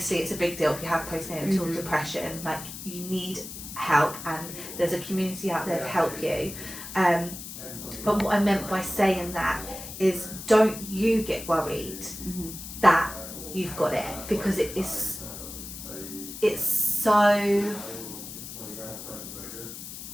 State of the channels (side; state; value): left; noise; hiss, 11 dB below the sound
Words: it's a big deal if you have postnatal depression. Like you need help, and there's a community out there to help you. But what I meant by saying that is don't you get worried that you've got it, because it's